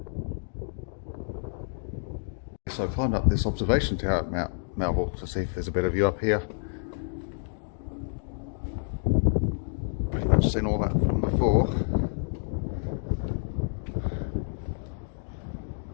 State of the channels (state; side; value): silent; right; digital silence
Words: So I climbed up this observation tower at Mt Melville to see if there's a better view up here. Pretty much seen all that from before.